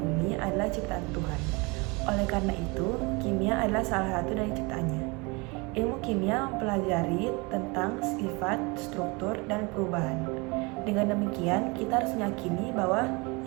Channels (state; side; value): quieter; left; 27.5 dB